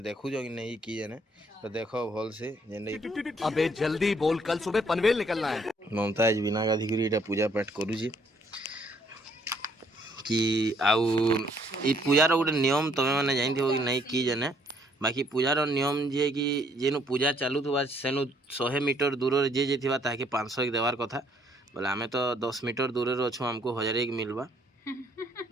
देखु जो कि नहीं की जने तो देखो भल से जेने अबे जल्दी बोल, कल सुबह पनवेल निकलना है। ममताज बिना गाधी करी एटा पूजा पाठ करू छी कि आउ ई पूजार गोटे नियम तमे माने जानथि हो कि नहीं की जने बाकी पूजार नियम जे कि जेनु पूजा चालू थुबा सेनु 100 मीटर दूर जे जे थिबा ताके 500 एक देवार कथा बोले आमे तो 10 मीटर दूर रे अछु हमको 1000 एक मिलबा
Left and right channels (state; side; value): normal; both; correlation 0.66